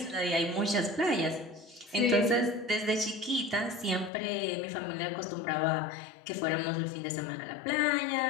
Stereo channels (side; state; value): right; drops out; at 4.1 s